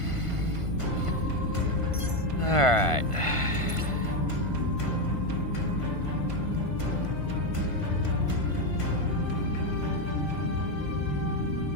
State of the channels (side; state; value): right; late; 1.5 ms